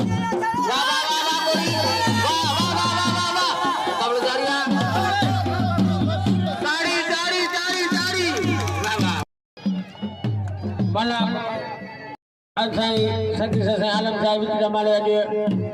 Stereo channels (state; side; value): identical; both; correlation 1.00